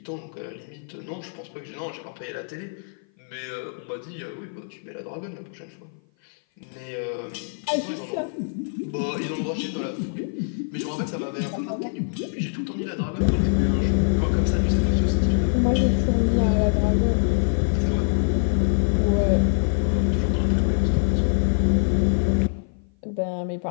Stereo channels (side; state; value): right; silent; 56 dB below the other